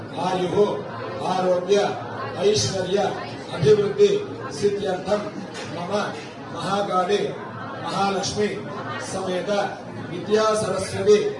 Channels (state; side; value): identical; both; correlation 1.00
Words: आयुः आरोग्य ऐश्वर्य अभिवृद्धि सिद्ध्यर्थं मम महाकाली महालक्ष्मी समेत विद्या सरस्वती